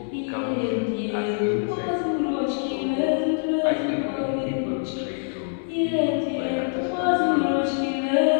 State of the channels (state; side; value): silent; right; 62 dB below the other